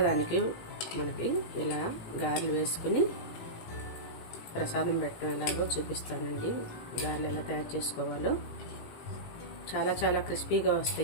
మనకి ఇలా గారెలు వేసుకుని ప్రసాదం పెట్టడం ఎలాగో చూపిస్తానండి. గారెలు ఎలా తయారు చేసుకోవాలో చాలా చాలా క్రిస్పీగా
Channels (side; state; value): right; late; 17 ms